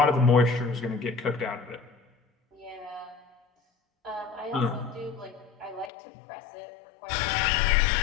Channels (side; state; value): right; drops out; at 5.9 s